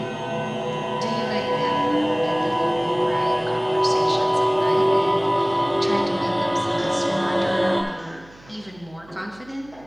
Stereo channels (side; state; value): right; noise; hum, 25 dB below the sound